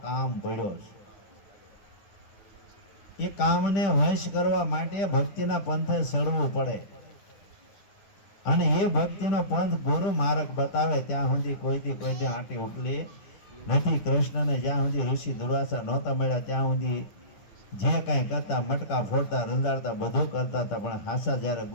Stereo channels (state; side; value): late; right; 10 ms